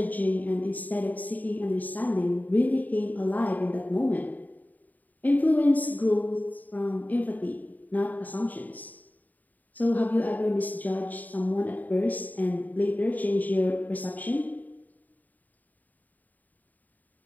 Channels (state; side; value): late; right; 0.082 ms